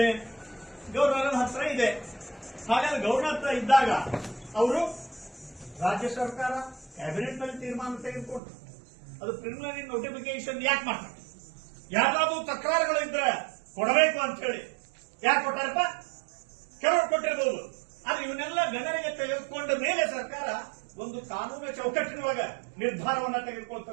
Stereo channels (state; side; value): drops out; left; at 8.4 s